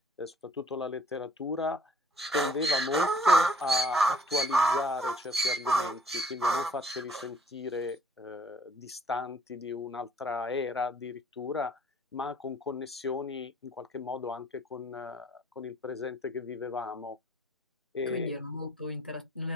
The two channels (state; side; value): normal; both; correlation 0.60